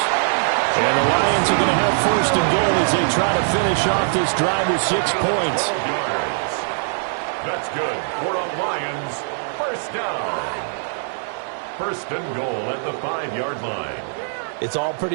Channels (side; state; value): left; silent; 64 dB below the other